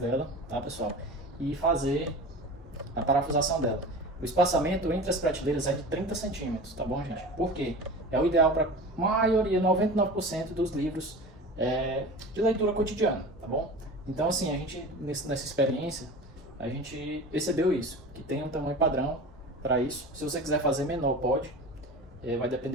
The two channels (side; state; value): both; normal; correlation 0.34